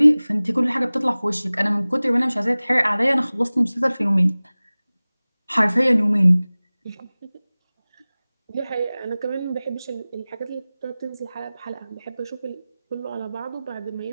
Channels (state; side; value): inverted; both; correlation -0.99